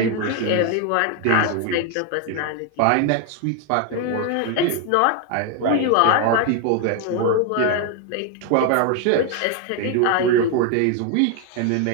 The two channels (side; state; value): both; different; correlation 0.01